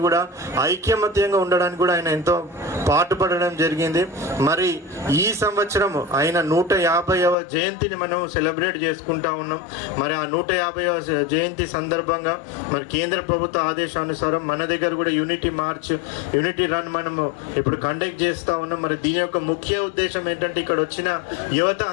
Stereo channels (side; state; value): right; drops out; at 7.4 s